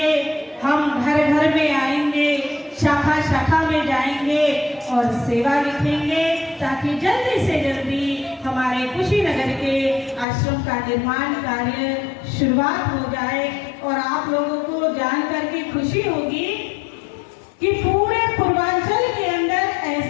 हम घर घर में आएंगे, शाखा शाखा में जाएंगे और सेवा लिखेंगे, ताकि जल्दी से जल्दी हमारे कुशीनगर के आश्रम का निर्माण कार्य शुरुआत हो जाए। और आप लोगों को जान करके खुशी होगी कि पूरे पूर्वांचल के अंदर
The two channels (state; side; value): drops out; right; at 10.2 s